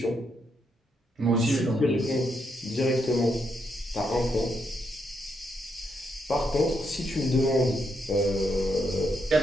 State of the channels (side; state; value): both; normal; correlation 0.78